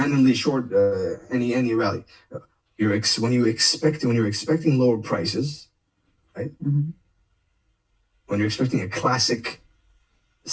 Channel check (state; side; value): identical; both; correlation 1.00